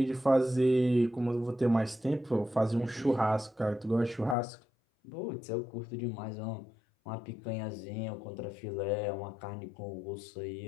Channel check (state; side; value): drops out; right; at 4.4 s